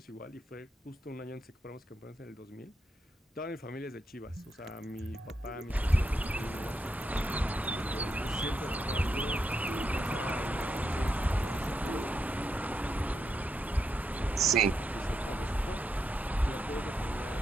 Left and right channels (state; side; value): normal; both; correlation 0.83